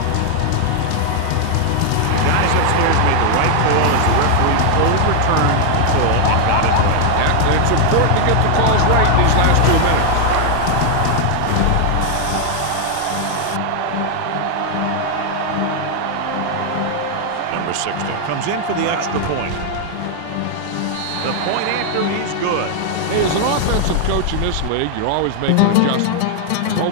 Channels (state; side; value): different; both; correlation 0.00